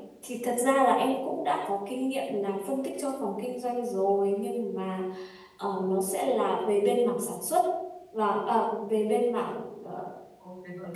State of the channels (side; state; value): both; identical; correlation 1.00